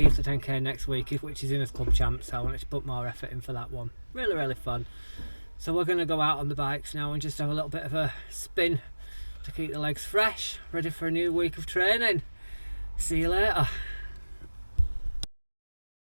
to 10K next week, which is in as club champ, so I wanted to put more effort in for that one. Really fun. So we're going to go out on the bikes now and just have a little bit of a spin to keep the legs fresh, ready for a new week of training. See you later.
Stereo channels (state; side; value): inverted; both; correlation -1.00